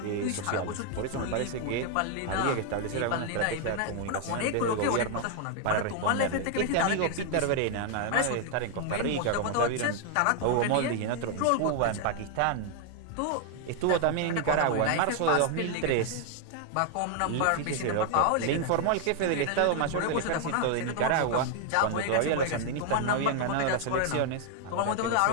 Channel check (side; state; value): both; different; correlation 0.00